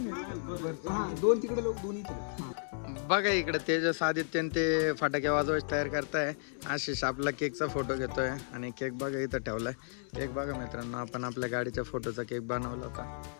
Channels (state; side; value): silent; right; 55 dB below the other